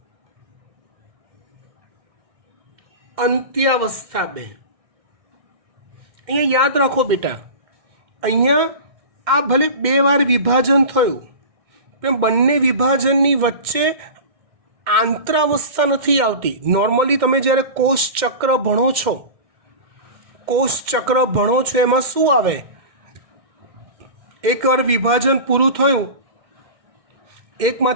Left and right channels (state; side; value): late; left; 1.6 ms